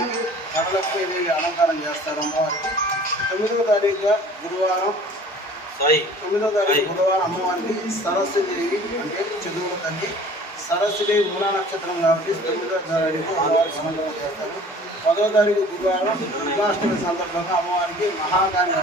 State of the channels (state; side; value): normal; both; correlation 0.48